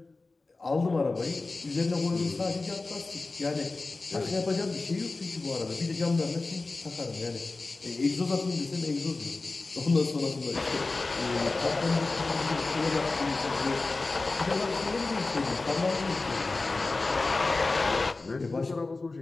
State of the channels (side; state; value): right; quieter; 3.5 dB